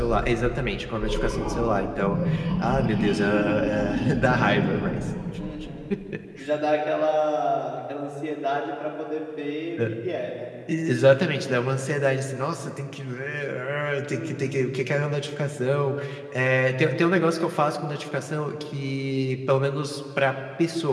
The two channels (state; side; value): identical; both; correlation 1.00